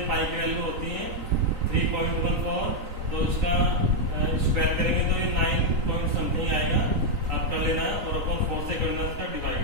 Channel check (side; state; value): left; late; 3.9 ms